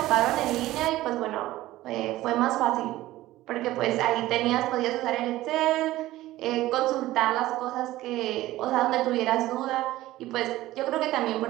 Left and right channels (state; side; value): quieter; left; 16.2 dB